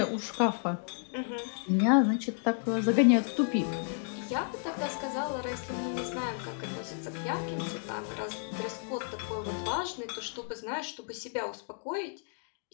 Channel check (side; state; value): right; silent; 56 dB below the other